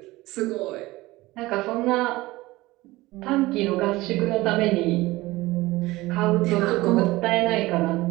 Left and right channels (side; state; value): left; quieter; 19.4 dB